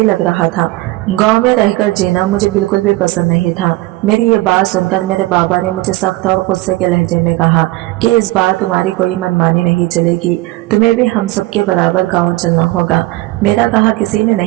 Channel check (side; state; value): left; quieter; 19.5 dB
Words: लग रहा था। गांव में रहकर जीना मुझे बिल्कुल भी पसंद नहीं था। मेरी ये बात सुनकर मेरे बाबा ने मुझे सख्त और गुस्से के लहजे में कहा कि इस बार तुम्हारी कोई मनमानी नहीं चलेगी, तुम्हें भी हम सबके बराबर गाँव चलना होगा। मेरा कहा किसी ने